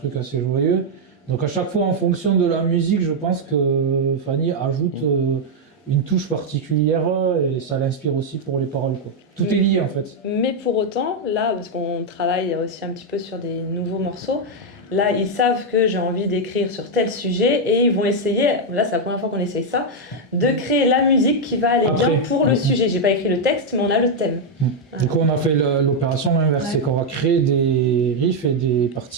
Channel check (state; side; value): normal; both; correlation 0.00